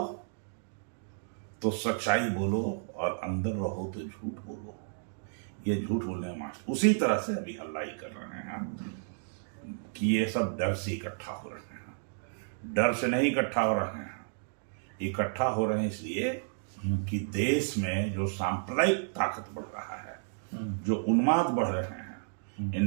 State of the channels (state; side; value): silent; left; digital silence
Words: तो सच्चाई बोलो और अंदर रहो तो झूठ बोलो। ये झूठ बोलने मास्टर उसी तरह से अभी हल्ला ही कर रहे हैं कि ये सब डर से इकट्ठा हो रहे हैं। डर से नहीं इकट्ठा हो रहे हैं, इकट्ठा हो रहे हैं इसलिए कि देश में जो सांप्रदायिक ताकत बढ़ रहा है, जो उन्माद बढ़ रहे हैं,